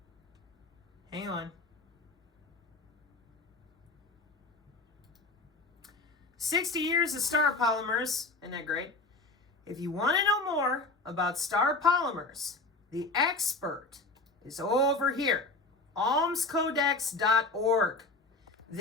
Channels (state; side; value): quieter; right; 3.3 dB